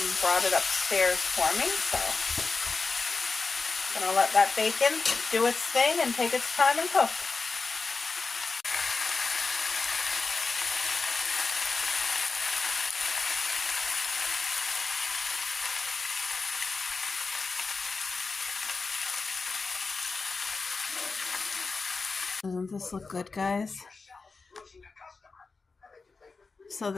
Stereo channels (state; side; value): quieter; right; 4.3 dB